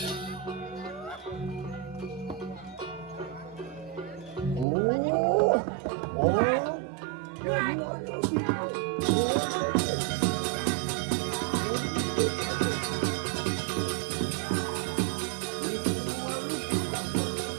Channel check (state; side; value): drops out; left; at 4.7 s